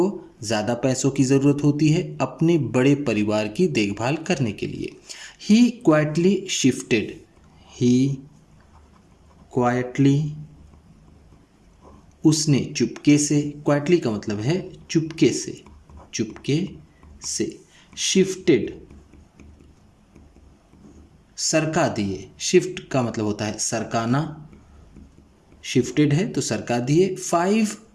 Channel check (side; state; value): both; identical; correlation 1.00